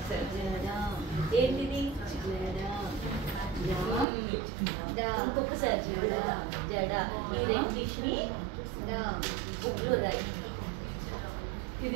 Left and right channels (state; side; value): drops out; left; at 4.0 s